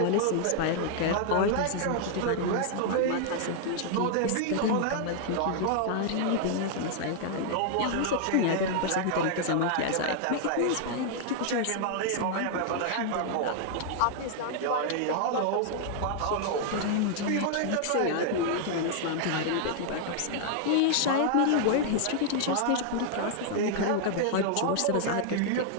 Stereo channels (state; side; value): different; both; correlation -0.01